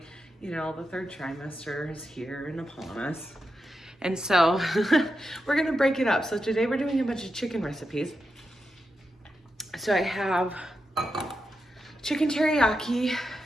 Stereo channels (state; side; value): normal; both; correlation 0.87